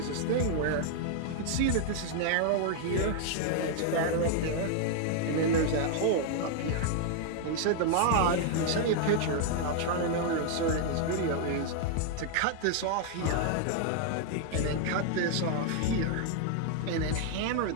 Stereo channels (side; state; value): both; different; correlation 0.00